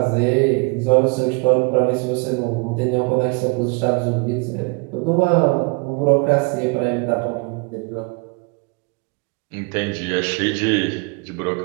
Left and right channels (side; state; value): left; quieter; 32.6 dB